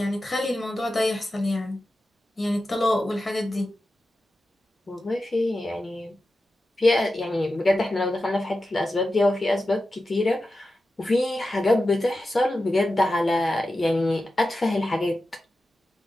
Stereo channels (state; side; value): normal; both; correlation 0.92